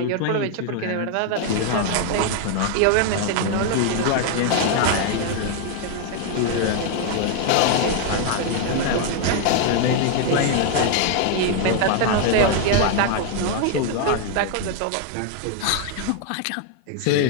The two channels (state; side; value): different; both; correlation 0.00